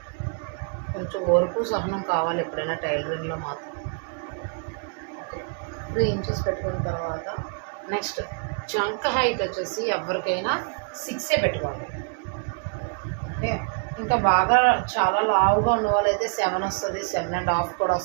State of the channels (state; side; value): quieter; left; 37.9 dB